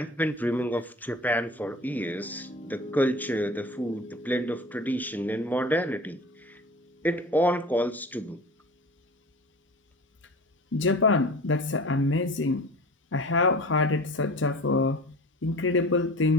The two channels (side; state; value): both; normal; correlation 0.38